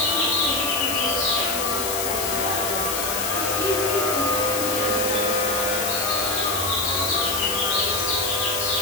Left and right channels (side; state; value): left; noise; hiss, 2 dB below the sound